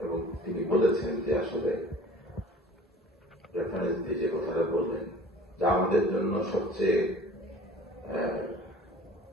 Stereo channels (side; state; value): both; normal; correlation 0.46